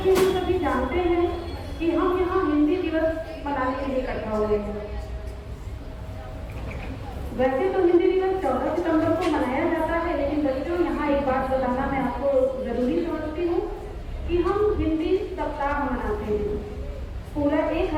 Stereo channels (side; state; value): both; identical; correlation 1.00